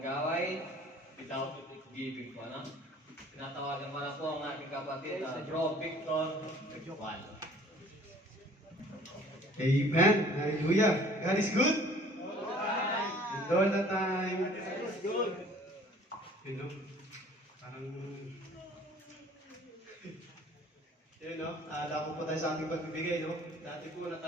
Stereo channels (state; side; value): normal; both; correlation 0.52